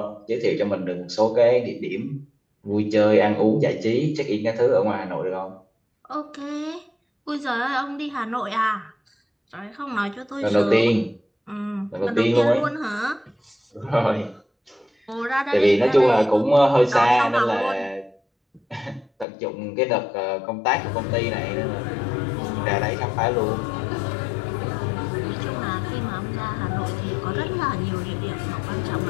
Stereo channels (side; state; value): right; drops out; at 19.2 s